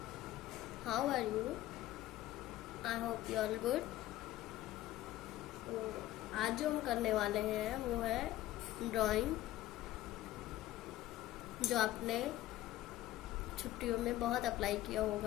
How are you? I hope you are good. तो आज जो हम करने वाले हैं वो है ड्राइंग, जो आपने छुट्टियों में बहुत अप्लाई किया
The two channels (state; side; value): quieter; right; 14.9 dB